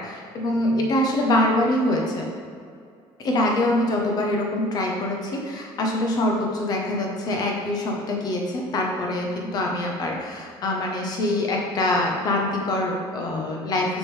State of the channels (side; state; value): both; normal; correlation 0.45